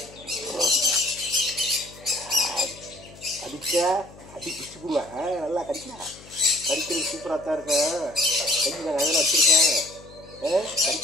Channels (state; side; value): noise; left; hum, 21 dB below the sound